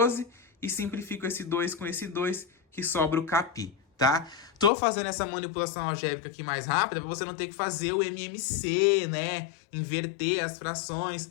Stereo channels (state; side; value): drops out; right; at 4.7 s